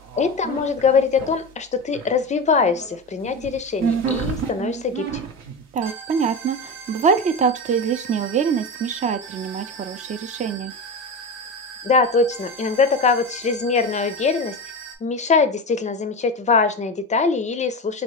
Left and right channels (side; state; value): both; normal; correlation 0.22